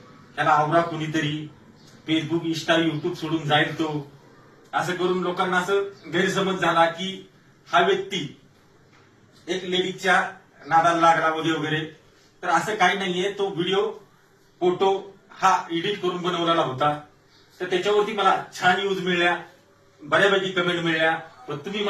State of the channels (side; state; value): both; identical; correlation 1.00